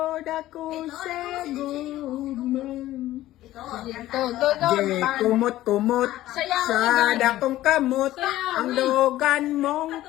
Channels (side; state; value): right; quieter; 15.0 dB